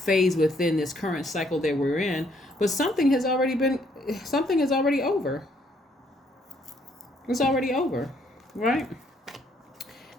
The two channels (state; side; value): normal; both; correlation 0.68